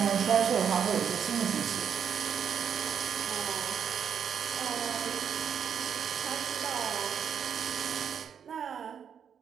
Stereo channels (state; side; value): quieter; left; 7.8 dB